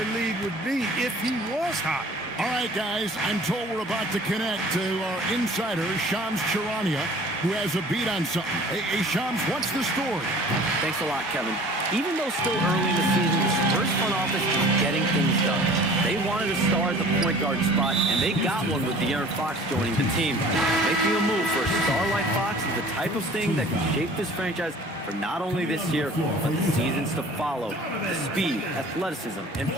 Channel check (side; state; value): both; normal; correlation 0.47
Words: lead would be if he was hot. All right, guys, I'm told we're about to connect to our insider, Shams Charania, who has a beat on something. Hey, Shams, what's the story? Thanks a lot, Kevin. Even though still early in the season, the Spurs front office is getting things done. They wanted a star at the point guard spot, and they got one with De'Aaron Fox joining the team. Making a move for a star like Fox is the type of thing that can shape this franchise for not only this year, but the seasons to follow. The speed, athleticism, and